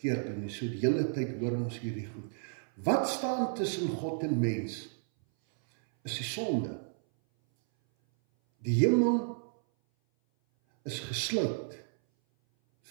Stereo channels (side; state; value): left; silent; 56 dB below the other